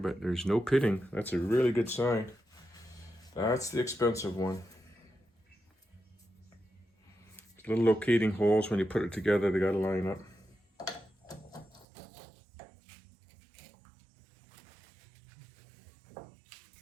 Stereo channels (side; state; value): left; drops out; at 11.9 s